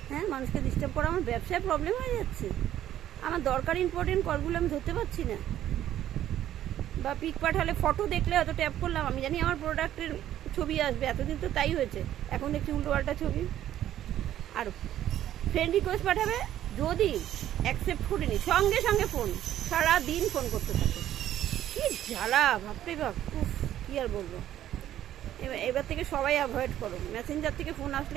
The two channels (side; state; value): left; quieter; 12.0 dB